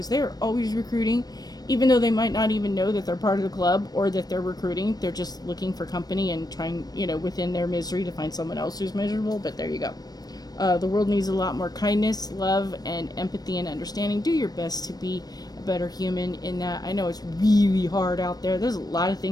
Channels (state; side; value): late; right; 0.19 ms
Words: they are always recruiting, even though they might not even know that they're part of the club or that they're recruiting. They're just looking for company and trying, within their misery to find someone else who's miserable. But there you go. The world needs a lot more kindness, love, and empathy and understanding. Do your best to be a better human in that. I know it's really hard out there. There's a lot of